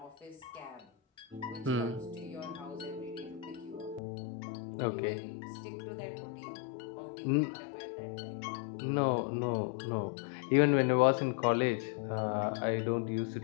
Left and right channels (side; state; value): right; drops out; at 4.0 s